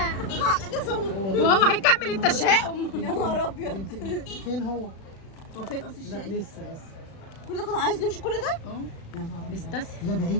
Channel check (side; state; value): right; late; 36 ms